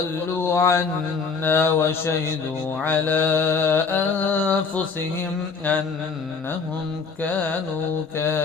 ضلوا عنا وشهدوا على أنفسهم أنهم كانوا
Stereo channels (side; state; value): right; quieter; 5.1 dB